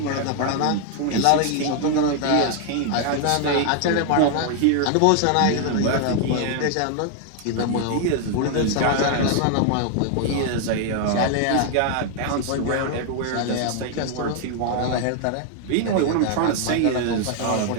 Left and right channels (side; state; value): both; different; correlation 0.00